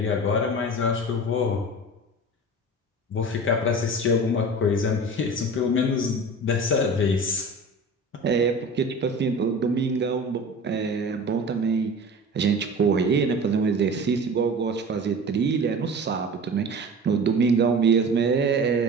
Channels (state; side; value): normal; both; correlation 0.36